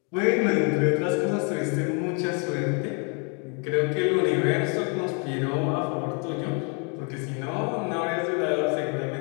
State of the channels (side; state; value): right; quieter; 36.9 dB